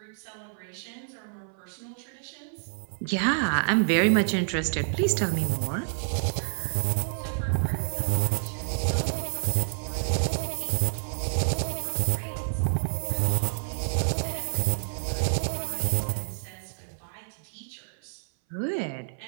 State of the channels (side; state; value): left; silent; 57 dB below the other